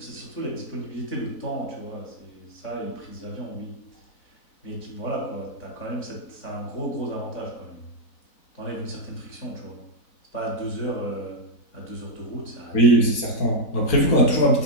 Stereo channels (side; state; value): right; late; 4.0 ms